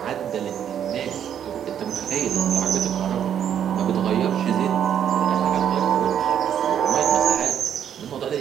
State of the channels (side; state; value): left; quieter; 9.3 dB